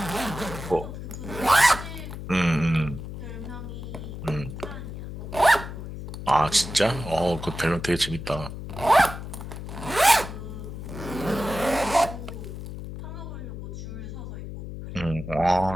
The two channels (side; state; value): left; noise; hum, 9 dB below the sound